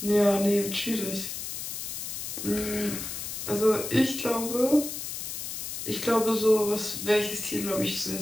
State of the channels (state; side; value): noise; left; hiss, 6 dB below the sound